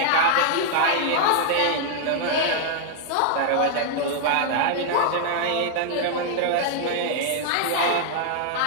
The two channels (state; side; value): different; both; correlation -0.01